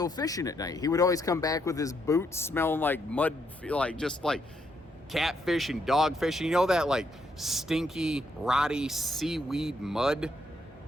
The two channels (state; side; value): normal; both; correlation 0.76